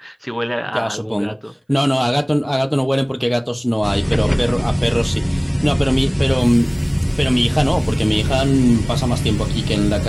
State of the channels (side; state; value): both; identical; correlation 1.00